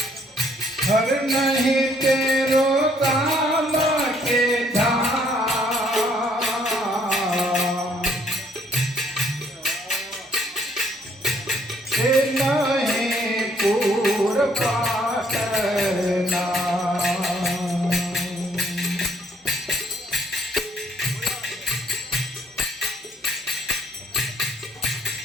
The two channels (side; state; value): both; normal; correlation 0.66